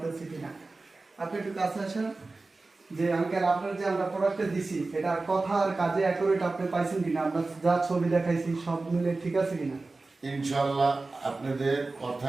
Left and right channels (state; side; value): quieter; left; 3.5 dB